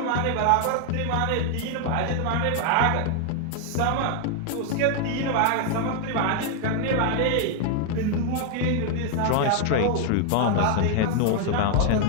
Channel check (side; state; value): both; different; correlation 0.00